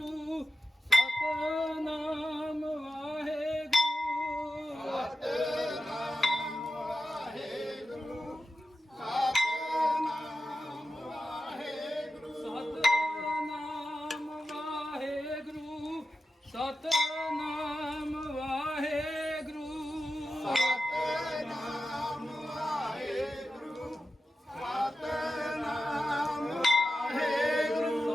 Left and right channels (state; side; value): normal; both; correlation 0.92